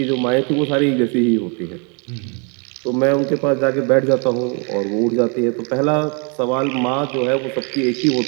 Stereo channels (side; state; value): left; quieter; 35.6 dB